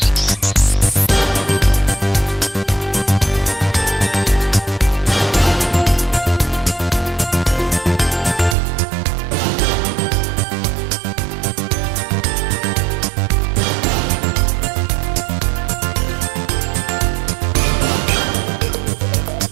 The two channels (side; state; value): left; drops out; at 8.6 s